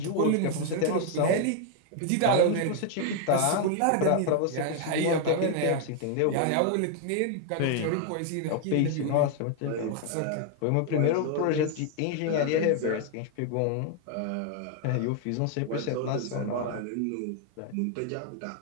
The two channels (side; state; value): both; different; correlation 0.00